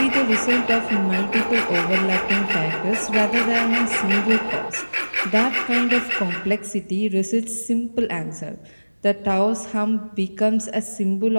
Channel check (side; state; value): both; inverted; correlation -1.00